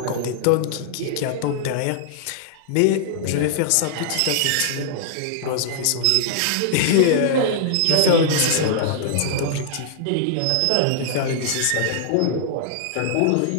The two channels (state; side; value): different; both; correlation -0.01